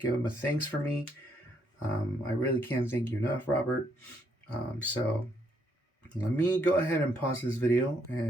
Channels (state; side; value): normal; both; correlation 0.72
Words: him a thanks for me. I really can't thank you enough, Robert. So let me go ahead and pause this video